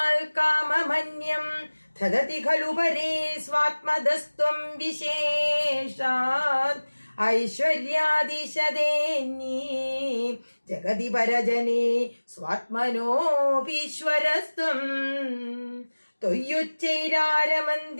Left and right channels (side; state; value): both; inverted; correlation -1.00